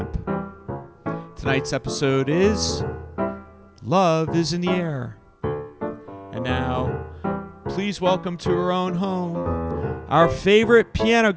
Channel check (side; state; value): both; identical; correlation 1.00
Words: Tonight's episode is Love is in the Air. And now, please welcome to her own home, our favorite piano